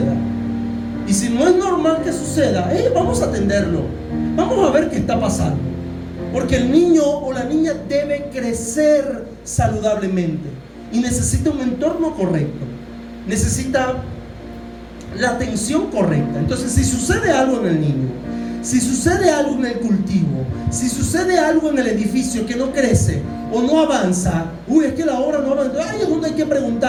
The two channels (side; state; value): both; identical; correlation 1.00